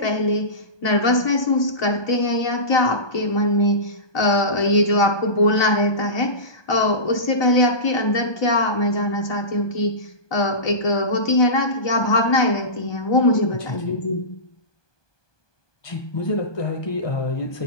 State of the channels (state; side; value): late; right; 1.2 ms